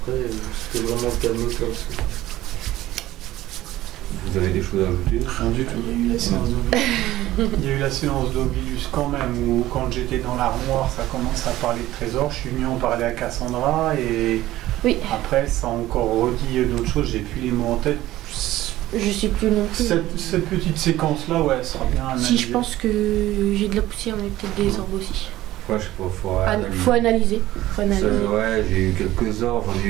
c'était vraiment calme comme ça. Vous avez des choses à ajouter? Rien du tout. Il y a eu la séance d'Ovilus. Il y a eu la séance d'Ovilus quand même, où quand j'étais dans l'armoire, ça commence à parler de trésors. Je suis venu en parler à Cassandra et Oui. après, ça a encore redit d'autres choses. J'ai plus les mots en tête. Je sais plus non plus. Cette petite séquence-là, ouais, elle sera bien analysée. Si je pense que j'ai de la poussière, mais peut-être des orbes aussi. Ouais, je sais pas, Faut analyser. Faut analyser. Ouais, j'ai eu quelques orbes, j'en ai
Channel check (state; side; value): quieter; left; 15.6 dB